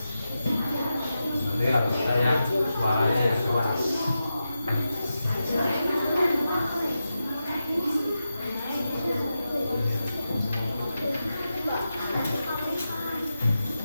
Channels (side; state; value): both; inverted; correlation -0.90